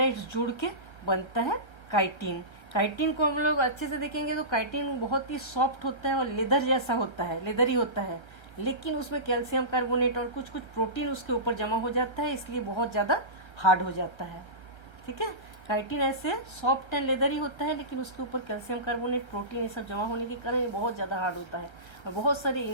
जुड़ के बनता है काइटिन। काइटिन को हम लोग अच्छे से देखेंगे तो काइटिन बहुत ही सॉफ्ट होता है और लेदर जैसा होता है, लेदर ही होता है, लेकिन उसमें कैल्शियम कार्बोनेट और कुछ कुछ प्रोटीन उसके ऊपर जमा हो जाता है, इसलिए बहुत ज़्यादा हार्ड हो जाता है। ठीक है, काइटिन ऐसे सॉफ्ट एंड लेदर ही होता है, लेकिन उसके ऊपर कैल्शियम कार्बोनेट, प्रोटीन ये सब जमा होने के कारण ये बहुत ज़्यादा हार्ड होता है। और बहुत सारे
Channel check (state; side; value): late; right; 1.3 ms